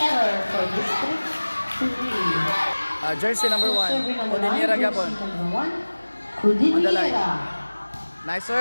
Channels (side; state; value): both; inverted; correlation -1.00